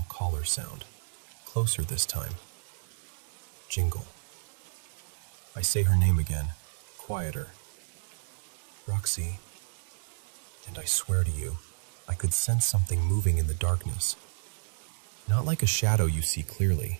collar sound, closer this time. Jingle. I say her name again, quieter. Roxy. And I swear to you, I could sense something moving in the darkness. Not like a shadow you see clearly,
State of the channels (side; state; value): left; silent; 57 dB below the other